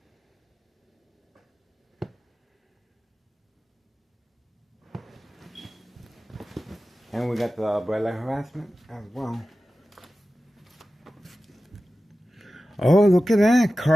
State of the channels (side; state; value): both; normal; correlation 0.94